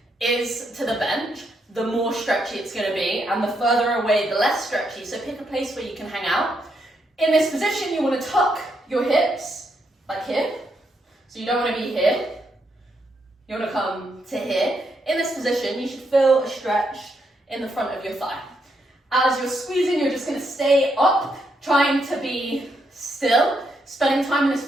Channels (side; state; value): both; normal; correlation 0.78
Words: is to the bench, the more stretchy it's going to be, and the further away, the less stretchy. So pick a place where you can hang out. In this position, you want to tuck your hips, like here. So you don't want to be here. You want to come to here. In this position, you should feel a stretch in the front of your thigh. As you're squeezing, you're just going to stay up, trying to be still, spending time in this